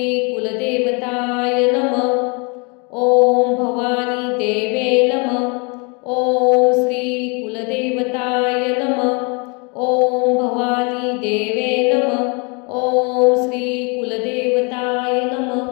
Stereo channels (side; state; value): right; quieter; 31.8 dB